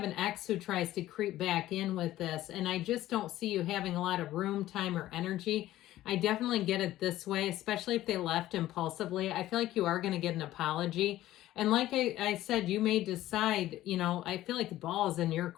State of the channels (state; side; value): quieter; right; 14.7 dB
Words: an ex who tries to creep back in with this, and I just don't see you having a lot of room, time, or energy. I definitely get it this way, especially if they left impulsively. I feel like you are going to get an apology. And like I said, you may decide, I feel like the ball is in your